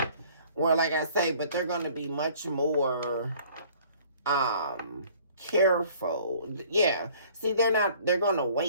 Or like I say, but they're going to be much more careful. Yeah. See, they're going to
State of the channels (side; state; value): both; inverted; correlation -0.54